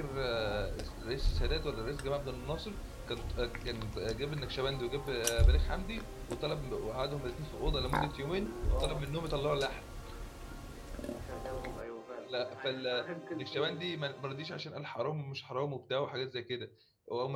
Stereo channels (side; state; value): both; identical; correlation 1.00